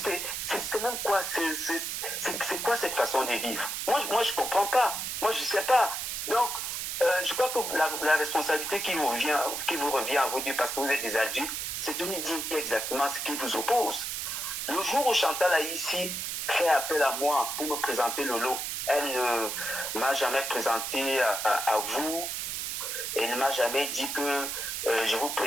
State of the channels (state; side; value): noise; right; hiss, 3 dB below the sound